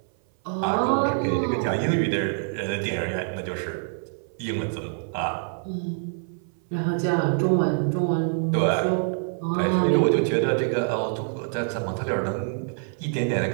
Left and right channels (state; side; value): silent; left; 57 dB below the other